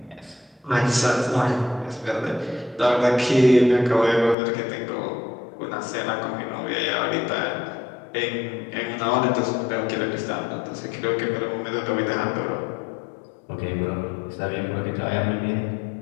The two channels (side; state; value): right; drops out; at 4.4 s